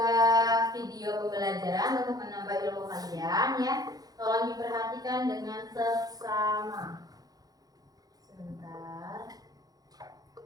video pembelajaran untuk menambah ilmu kalian, ya. Tolong diperhatikan dengan seksama. Sebentar.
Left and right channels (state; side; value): late; left; 0.18 ms